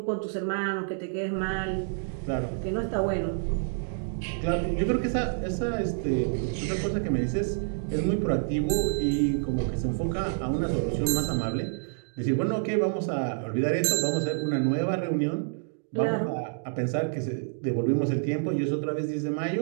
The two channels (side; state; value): left; silent; digital silence